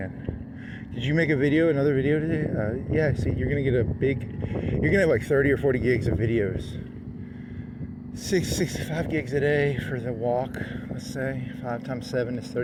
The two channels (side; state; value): both; identical; correlation 1.00